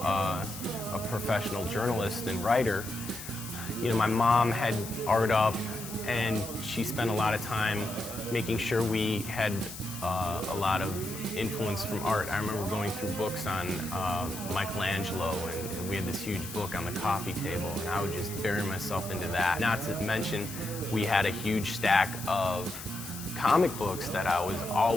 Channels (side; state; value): left; noise; hiss, 11 dB below the sound